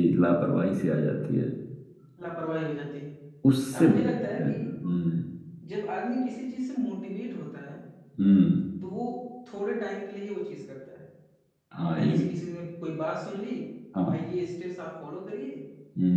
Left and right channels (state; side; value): identical; both; correlation 1.00